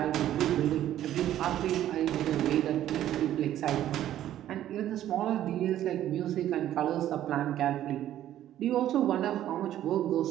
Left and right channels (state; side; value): quieter; left; 12.2 dB